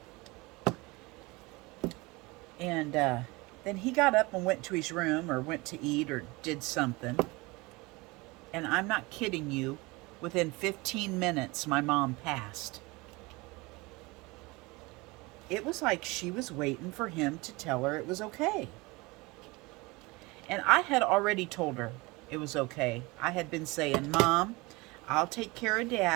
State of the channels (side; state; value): left; quieter; 24.0 dB